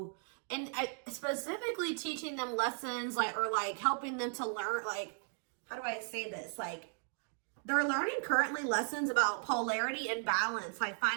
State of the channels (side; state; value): left; silent; 54 dB below the other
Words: specifically teaching them lessons, like, or like helping them to learn, like, how do I say this? Like, they're learning currently lessons about polarity and balance, like